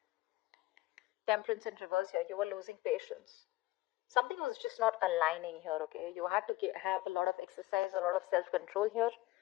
Temperance in reverse here. You were losing patience. Something was just not aligning here, okay? You had to have a lot of exercise, a lot of self-control here,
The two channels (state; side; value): quieter; right; 17.6 dB